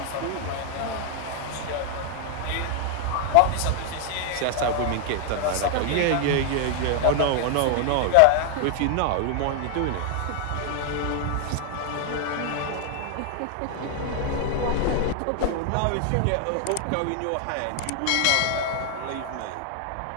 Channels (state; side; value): different; both; correlation 0.00